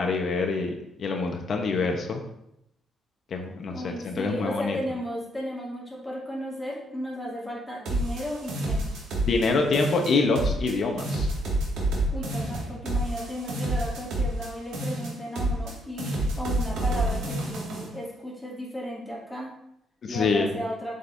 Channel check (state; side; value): normal; both; correlation 0.72